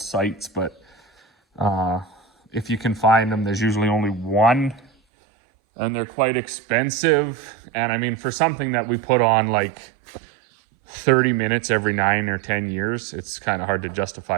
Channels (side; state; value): left; drops out; at 4.9 s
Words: sites, but if you can find them, there's usually only one, and they're quite expensive. And I mean, for something that we put on like 30 minutes every 9 or 10 years, it's kind of hard to